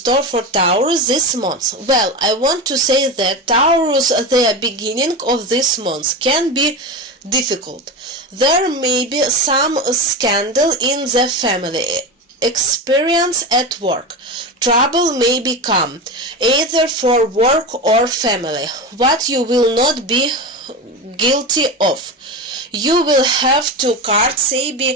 for Taurus this month. Well, I want to say that Taurus, the beginning of this month can be difficult. There may be some scandal in the family. Experience at work. Trouble may become either for work or family, what you will not be guilty of. You will have to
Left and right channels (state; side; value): normal; both; correlation 0.22